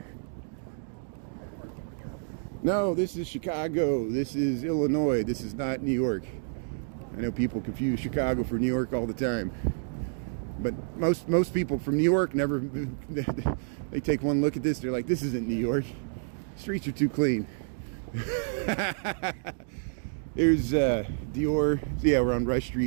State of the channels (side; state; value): left; silent; digital silence